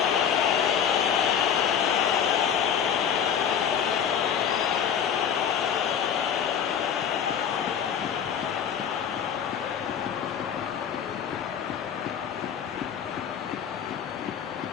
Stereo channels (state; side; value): quieter; right; 8.1 dB